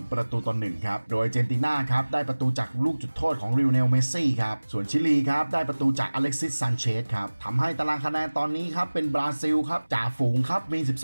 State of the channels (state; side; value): inverted; both; correlation -1.00